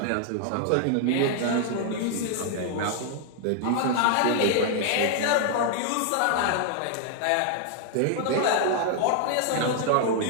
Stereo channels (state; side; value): different; both; correlation 0.00